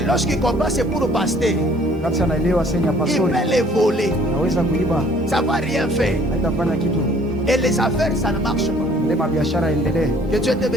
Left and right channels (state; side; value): normal; both; correlation 0.57